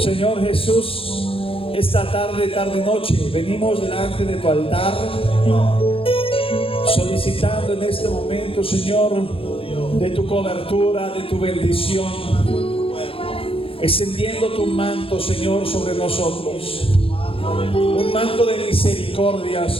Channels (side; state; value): right; late; 0.27 ms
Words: Jesús, esta tarde, noche, venimos delante de tu altar, solicitando en este momento, Señor, de tu cobertura, de tu bendición, extendiendo tu manto, Señor, sobre nosotros. Un manto de misericordia,